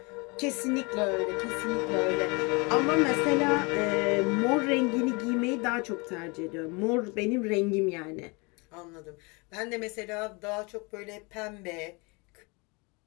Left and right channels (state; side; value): quieter; right; 28.7 dB